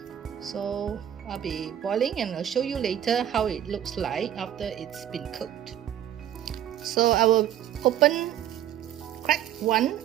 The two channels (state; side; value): quieter; left; 11.0 dB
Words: So I'll be boiling and I'll show you later how it looks like after it's been cooked. So I will crack one